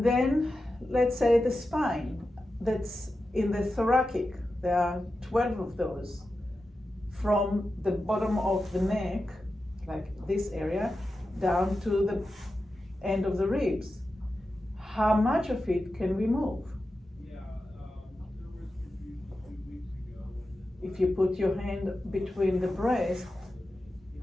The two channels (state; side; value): normal; both; correlation 0.91